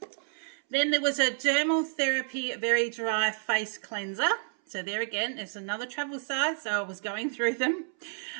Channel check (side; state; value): left; silent; 58 dB below the other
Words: Then there was a Dermal Therapy Very Dry Face Cleanser. So there again, it's another travel size, so I was going through them.